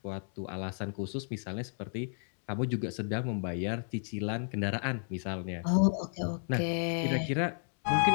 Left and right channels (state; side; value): silent; right; 56 dB below the other